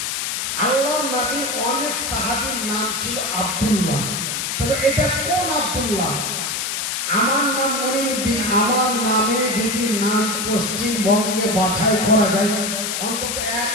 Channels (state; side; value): noise; left; hiss, 2 dB below the sound